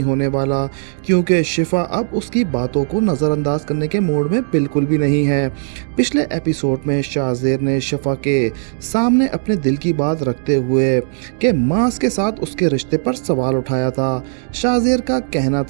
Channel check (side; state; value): left; silent; digital silence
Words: होने वाला, क्योंकि शिफा अब उसकी बातों को नज़रअंदाज करने के मूड में बिल्कुल भी नहीं है। पिछले एपिसोड में शाज़ेर ने शिफा के सामने अपने दिल की बात रखते हुए कि मास के साथ उसके रिश्ते पर सवाल उठाया था। शाज़ेर का कहना